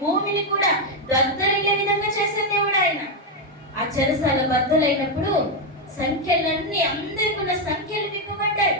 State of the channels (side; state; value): both; normal; correlation 0.03